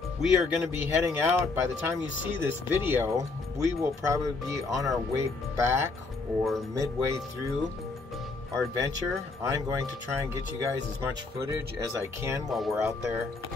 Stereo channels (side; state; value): right; quieter; 3.8 dB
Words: we are going to be heading out. By the time you see this video, we will probably be on our way back or midway through our adventure. I'm going to try and get you guys as much footage as I can while we're out there